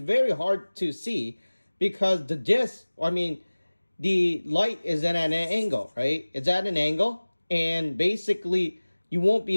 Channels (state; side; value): inverted; both; correlation -1.00